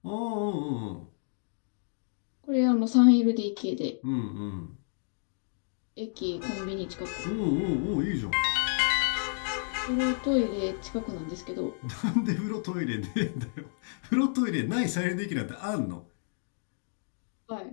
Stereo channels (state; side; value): silent; right; digital silence